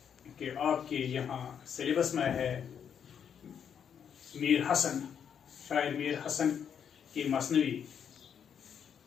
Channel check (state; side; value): quieter; right; 8.0 dB